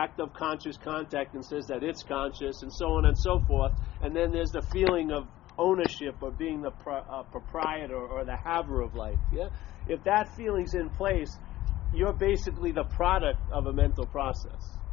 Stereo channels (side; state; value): right; quieter; 15.7 dB